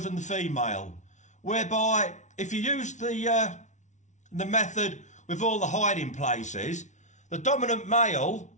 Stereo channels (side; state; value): right; late; 0.35 ms